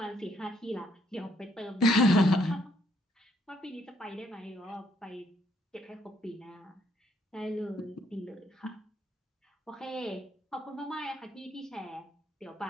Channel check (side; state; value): both; normal; correlation 0.70